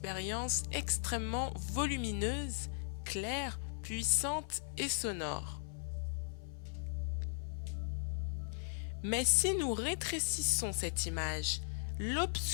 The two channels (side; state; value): right; silent; 53 dB below the other